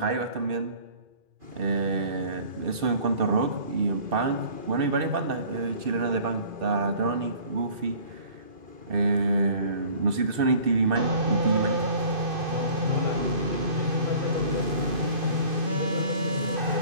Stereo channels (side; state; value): left; late; 2.5 ms